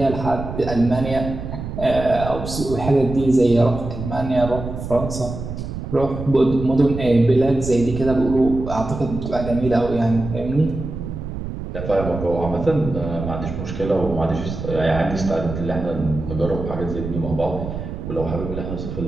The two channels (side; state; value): right; noise; rumble, 7 dB below the sound